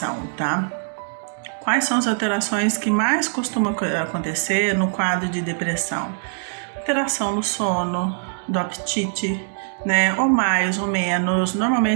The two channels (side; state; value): left; silent; digital silence